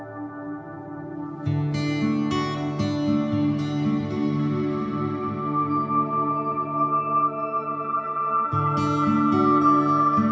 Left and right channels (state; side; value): identical; both; correlation 1.00